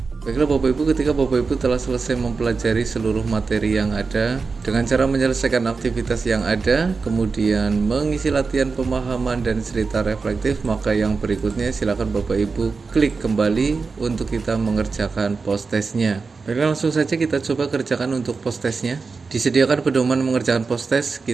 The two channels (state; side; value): quieter; left; 4.6 dB